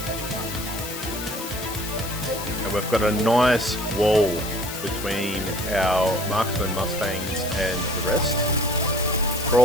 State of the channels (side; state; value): left; noise; hiss, 8 dB below the sound